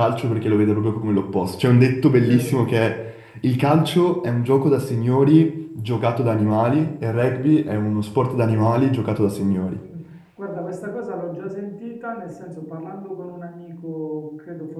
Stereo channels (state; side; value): identical; both; correlation 1.00